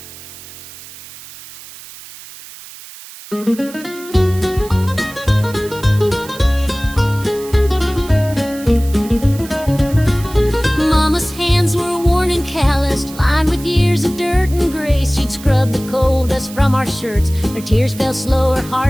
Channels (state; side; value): noise; right; hiss, 17 dB below the sound